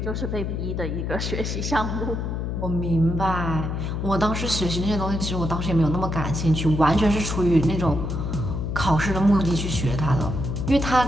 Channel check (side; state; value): left; noise; hum, 2 dB below the sound